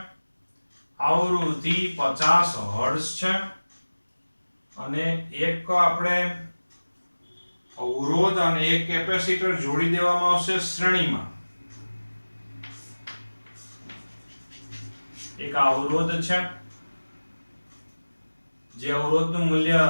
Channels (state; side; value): inverted; both; correlation -1.00